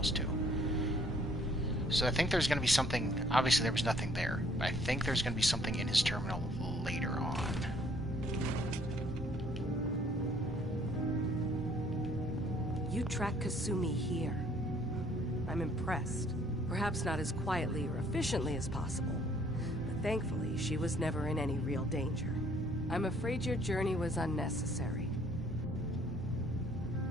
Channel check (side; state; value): both; normal; correlation 0.62